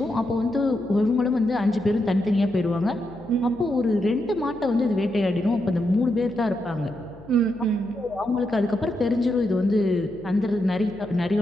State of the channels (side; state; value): left; noise; hum, 23 dB below the sound